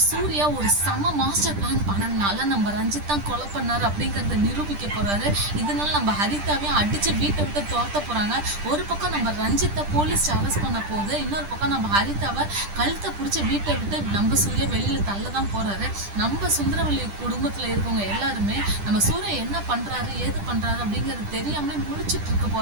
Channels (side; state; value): left; late; 10 ms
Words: சூர்யா ஒரு சம மாஸ்டர் பிளான் பண்ணனால நம்ம ரஞ்சித் தான் கொலை பண்ணாரு அப்படிங்கறத நிரூபிக்க போறாரு. இதனால நம்ம ஹரிதாவையும் அடிச்சு வீட்டை விட்டு துரத்த போறாங்க. ஒரு பக்கம் நம்ம ரஞ்சித்தை போலீஸ் அரெஸ்ட் பண்ண போகுது, இன்னொரு பக்கம் நம்ம ஹரிதாவை கழுத்தை பிடிச்சி வீட்டை விட்டு நம்ம சூர்யா வெளியில தள்ளதான் போறாரு. நம்ம சுந்தரவல்லி குடும்பத்துல இருக்கவங்க எல்லாருமே நம்ம சூர்யா என்ன பண்றாரு ஏது பண்றாரு அப்படிங்கிறது தெரியாமலே முழிச்சிட்டு இருக்க